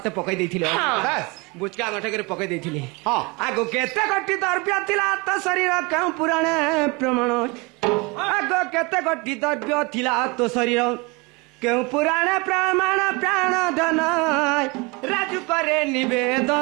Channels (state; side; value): quieter; left; 27.4 dB